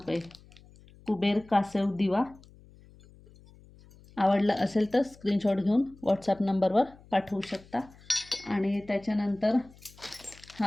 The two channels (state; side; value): noise; left; hum, 24 dB below the sound